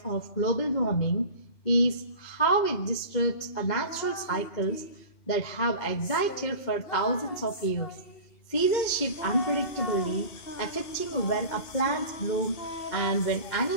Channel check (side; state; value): right; late; 2.1 ms